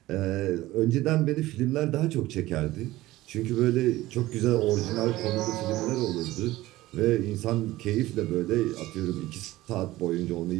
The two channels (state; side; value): quieter; left; 17.1 dB